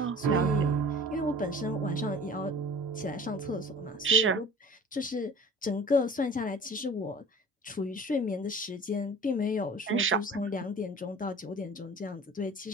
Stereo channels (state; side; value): normal; both; correlation 0.43